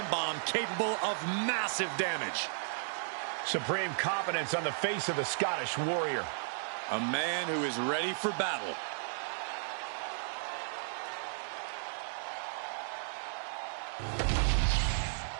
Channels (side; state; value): left; silent; digital silence